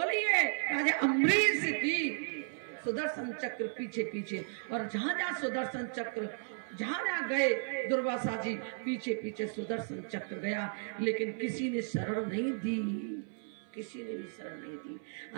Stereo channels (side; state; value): left; silent; 55 dB below the other